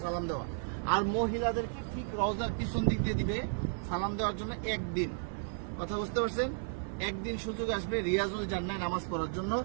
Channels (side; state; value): left; silent; digital silence